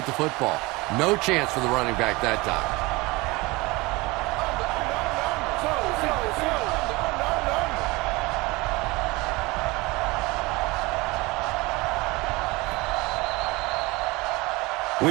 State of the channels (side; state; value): left; quieter; 23.2 dB